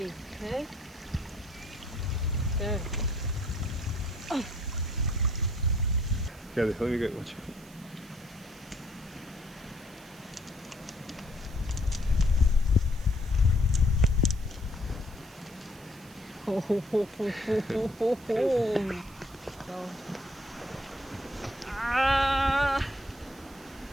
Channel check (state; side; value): noise; right; hiss, 23 dB below the sound